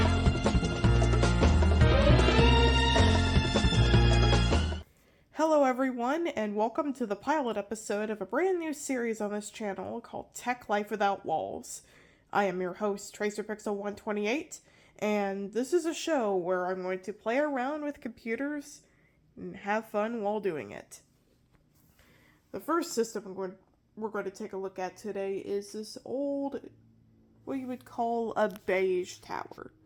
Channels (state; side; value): identical; both; correlation 1.00